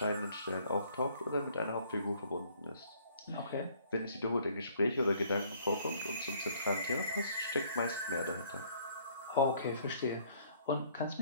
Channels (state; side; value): inverted; both; correlation -0.60